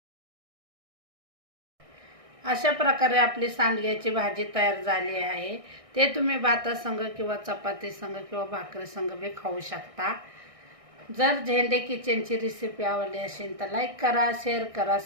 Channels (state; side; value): late; left; 1.6 ms